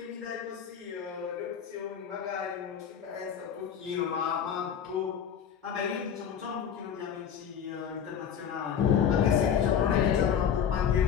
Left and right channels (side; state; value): right; quieter; 8.2 dB